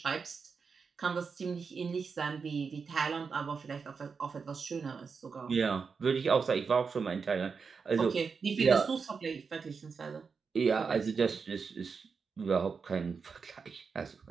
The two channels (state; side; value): quieter; left; 5.4 dB